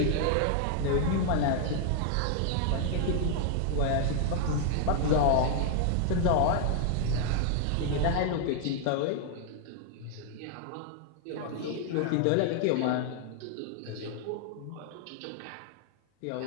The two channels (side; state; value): both; different; correlation 0.00